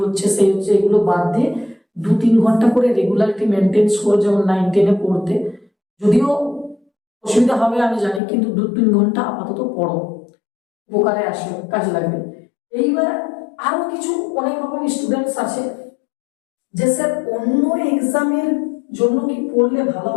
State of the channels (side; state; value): right; drops out; at 8.2 s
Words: হচ্ছে সেই হচ্ছে, এগুলো বাদ দিয়ে 2-3 ঘন্টা করে রেগুলারিটি মেনটেন্স করে, যেমন 9-10-এ পড়তে, যদিও অসুবিধা হবে আমি জানি, কিন্তু 2-3 ঘন্টা আপাতত পড়ো, উপকারে আসবে, কাজে লাগবে। এইবার আরো কিছু অনেক রকম স্টুডেন্টস আছে যে স্যার অন্য এক্সামের জন্য কি পড়লে ভালো